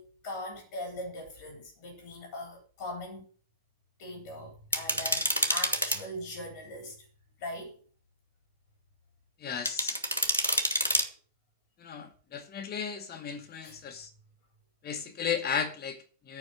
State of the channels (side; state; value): both; inverted; correlation -0.34